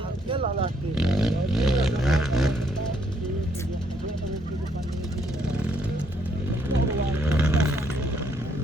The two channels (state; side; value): normal; both; correlation 0.71